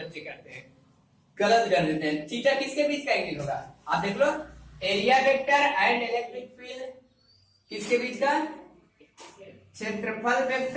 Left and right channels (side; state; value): both; identical; correlation 1.00